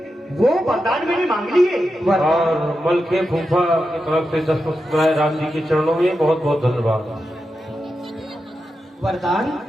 वो वरदान मैंने मांग लिए। और मलके फूफा की तरफ से 10 मुस्कुराए राम जी के चरणों में बहुत बहुत धन्यवाद। वरदान?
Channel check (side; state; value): both; normal; correlation 0.89